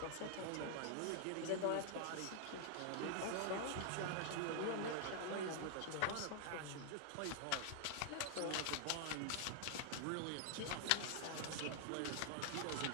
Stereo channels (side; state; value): both; different; correlation 0.00